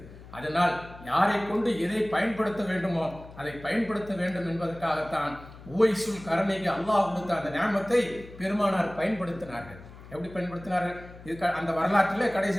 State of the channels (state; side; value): noise; left; hum, 18 dB below the sound